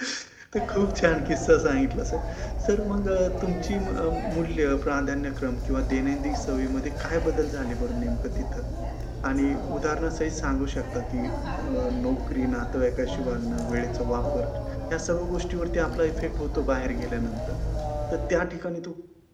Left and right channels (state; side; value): identical; both; correlation 1.00